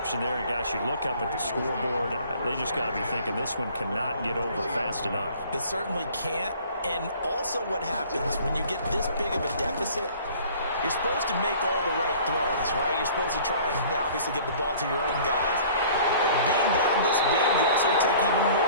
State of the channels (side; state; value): both; inverted; correlation -0.50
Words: there. And, gosh, you look up at the scoreboard. They just got to be thinking this one cannot get over fast enough. It certainly can't. And also what happens when you get this big of a deficit, you're supposed to make all the right throws, right? You're supposed to try and obviously get the ball to your own guys. But being down this big, you also take even